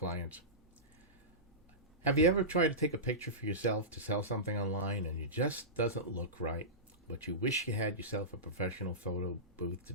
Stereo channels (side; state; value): both; normal; correlation -0.17